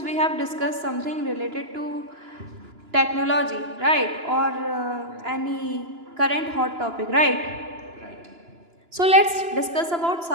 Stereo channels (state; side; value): late; left; 2.9 ms